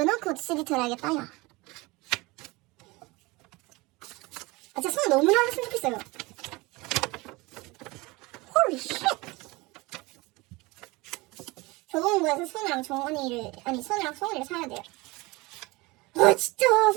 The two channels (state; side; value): quieter; left; 23.2 dB